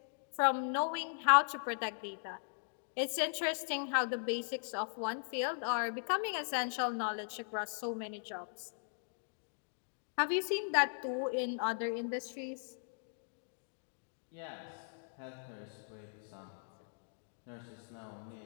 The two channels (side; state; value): right; silent; digital silence